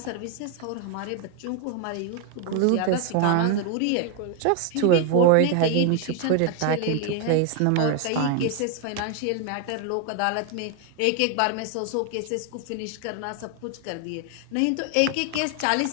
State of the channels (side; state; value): both; different; correlation 0.01